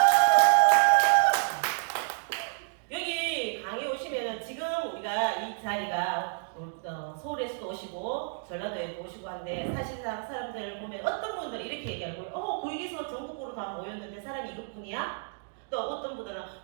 여기 강의 오시면은 지금 우리가 이 자리가 서울에서도 오시고 전라도에도 오시고 한데 사실상 사람들 보면 어떤 분들이 이렇게 얘기하고 거기서 전국구로 다 모였는데 사람이 이것뿐이야? 또 어떤 분들은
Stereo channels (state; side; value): silent; left; digital silence